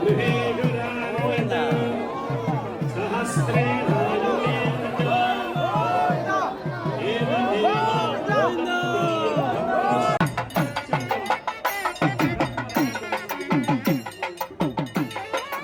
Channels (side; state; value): both; identical; correlation 1.00